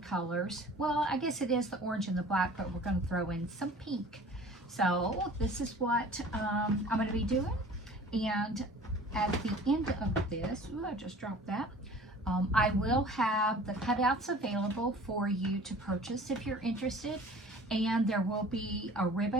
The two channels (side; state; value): both; normal; correlation 0.46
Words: colors. Well, I guess it is the orange and the black, but we're going to throw in some pink. So this is what I'm going to be doing. And at the end of this, ooh, I just dropped that. I will have the cutouts available for you to purchase if you're interested. And there will be a